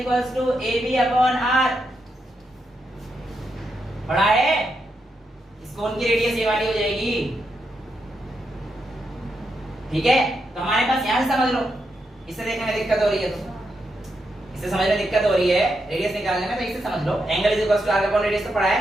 to AB upon r। पढ़ा है? इस कोण की रेडियस ये वाली हो जाएगी, ठीक है? तो हमारे पास यहां से समझ लो, इससे देखने में दिक्कत हो रही है तो इससे समझने में दिक्कत हो रही है रेडियस निकालने में, तो इससे समझ लो angle is equals to arc upon radius तो पढ़ा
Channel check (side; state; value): both; normal; correlation 0.83